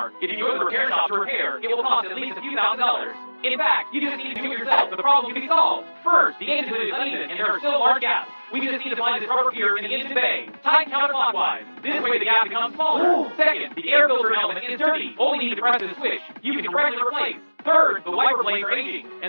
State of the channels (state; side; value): inverted; both; correlation -1.00